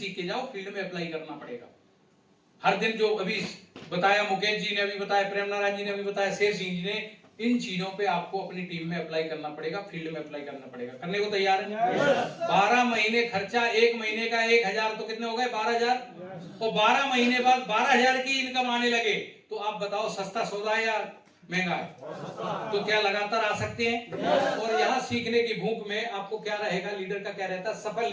के जाओ फील्ड में अप्लाई करना पड़ेगा। हर दिन जो अभी बताया मुकेश जी ने, अभी बताया प्रेम नारायण जी ने, अभी बताया शेर सिंह जी ने, इन चीजों पे आपको अपनी टीम में अप्लाई करना पड़ेगा, फील्ड में अप्लाई करना पड़ेगा। करने को तैयार है? 12 महीने खर्चा, 1 महीने का 1,000 तो कितने हो गए, 12,000। और 12 महीने बाद 12,000 की इनकम आने लगे तो आप बताओ सस्ता सौदा है या महंगा है? तो क्या लगातार आ सकते हैं? और यहाँ सीखने की भूख में आपको क्या रहेगा, लीडर का क्या रहता है, सफल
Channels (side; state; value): both; identical; correlation 1.00